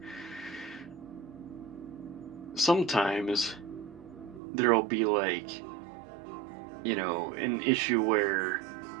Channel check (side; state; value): left; drops out; at 4.4 s